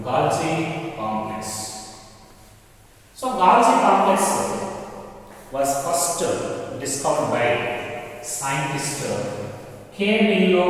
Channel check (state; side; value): identical; both; correlation 1.00